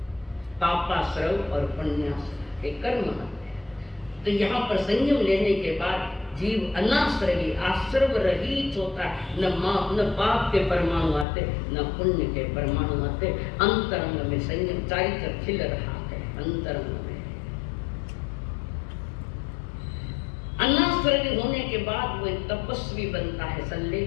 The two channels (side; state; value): right; drops out; at 11.2 s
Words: पापाश्रव और पुण्याश्रव के कर्म आते हैं। तो यहाँ पर संयम लेने के बाद जीव अनाश्रवी आश्रव रहित होता है। न पाप के परमाणु आते, न पुण्य के परमाणु आते। अंतरंग में संयम चारित्र खिल रहा है। अंतरंग में अनाश्रवी होने के बाद वो एक तपस्वी बनता है।